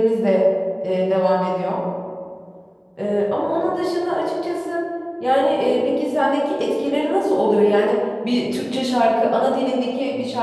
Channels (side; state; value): both; identical; correlation 1.00